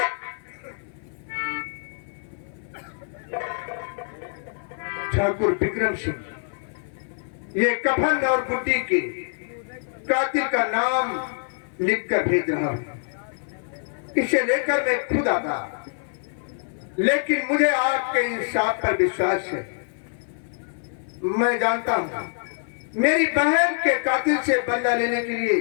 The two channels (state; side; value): silent; right; 56 dB below the other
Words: ठाकुर विक्रम सिंह, ये कफन और गुड्डी के कातिल का नाम लिखकर भेज रहा हूं। इसे लेकर मैं खुद आता, लेकिन मुझे आपके इंसाफ पर विश्वास है। मैं जानता हूं मेरी बहन के कातिल से बदला लेने के लिए